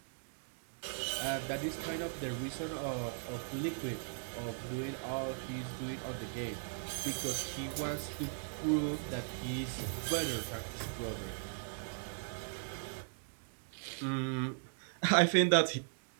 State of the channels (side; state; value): left; silent; digital silence